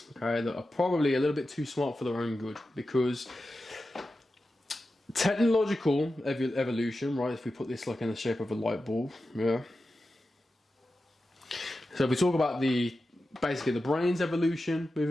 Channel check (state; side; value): normal; both; correlation 0.92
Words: okay, that are probably a little bit too smart for their own good, because technological evolution, right? If we put this like in the shape of a light bulb, yeah. So if we talk about basically the brain's evolution